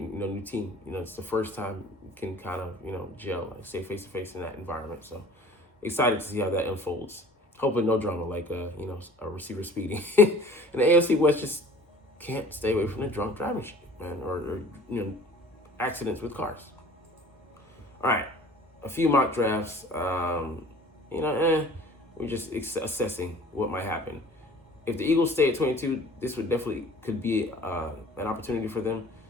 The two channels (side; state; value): both; normal; correlation 0.47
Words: new team. It's the first time you can kind of gel, like stay face to face in that environment. So excited to see how that unfolds. Hopefully no drama like a receiver speeding. And the AFC West just can't stay away from the drunk driving shit, man, or accidents with cars. All right, a few mock drafts. We're just assessing what might happen. If the Eagles stay at 22, this could be an opportunity for them.